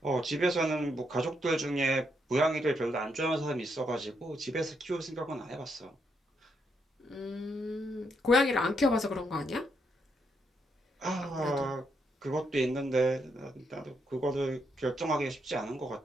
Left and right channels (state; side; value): normal; both; correlation 0.78